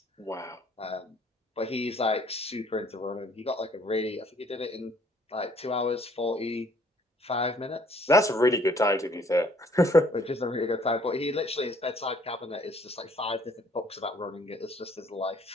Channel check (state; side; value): normal; both; correlation 0.61